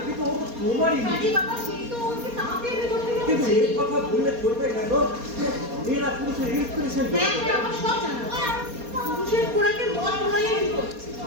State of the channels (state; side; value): late; left; 4.2 ms